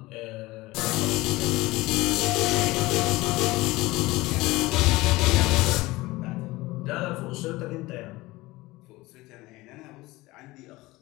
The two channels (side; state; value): right; quieter; 20.1 dB